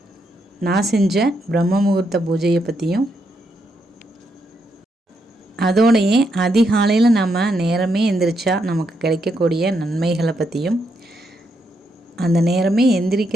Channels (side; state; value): both; normal; correlation 0.79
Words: நான் செஞ்ச பிரம்ம முகூர்த்த பூஜையை பற்றியும், அதோடையே அதிகாலையில் நம்ம நேரமே எந்திரிச்சா நமக்கு கிடைக்கக்கூடிய நன்மைகளை பற்றியும், அந்த நேரமே